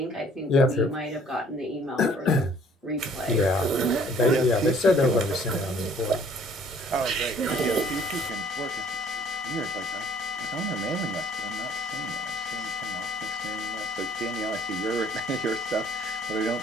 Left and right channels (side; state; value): both; normal; correlation 0.57